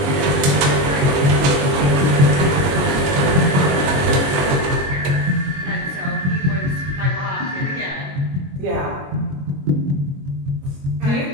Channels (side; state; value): left; late; 22 ms